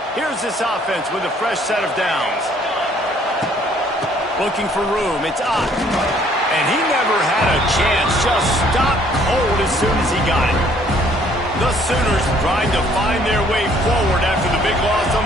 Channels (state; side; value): normal; both; correlation 0.61